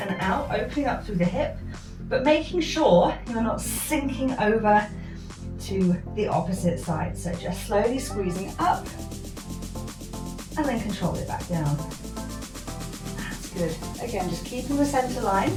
out, opening up through the hip, but making sure you're not sinking over to the opposite side. So just slowly squeezing up and then control it back down. That's good. Again, just keeping the center line.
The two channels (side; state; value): both; identical; correlation 1.00